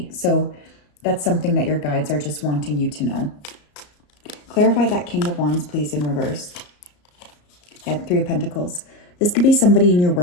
So that's something that your guides are just wanting you to know. Clarify that King of Wands, please, in reverse. Yeah, 3 of Pentacles. This could be somebody in your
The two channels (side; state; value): right; late; 34 ms